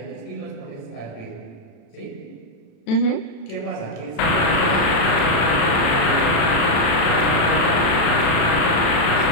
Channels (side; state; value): right; late; 36 ms